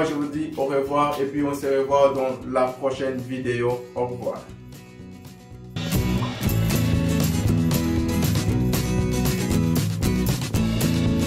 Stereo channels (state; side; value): identical; both; correlation 1.00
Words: je vous dis au revoir et puis on se revoit dans la prochaine vidéo. Au revoir.